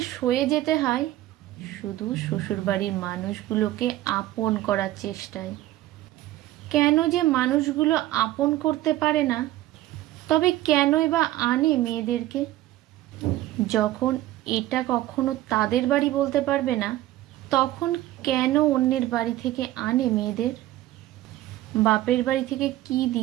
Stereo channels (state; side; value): quieter; left; 15.2 dB